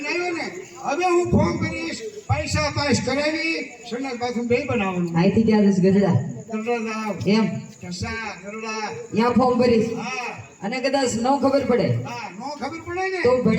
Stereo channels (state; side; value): identical; both; correlation 1.00